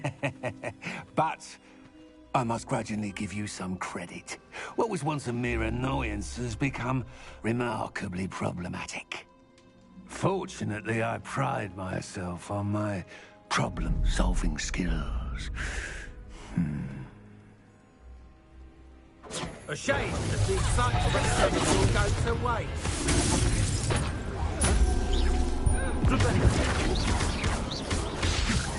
But I must grudgingly give you some credit. What was once a mere annoyance has become remarkably problematic. Fortunately, I pride myself on my problem-solving skills. A shame that the excitement will go to waste.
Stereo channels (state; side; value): identical; both; correlation 1.00